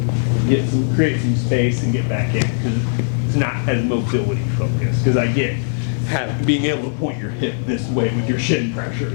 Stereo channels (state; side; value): silent; right; digital silence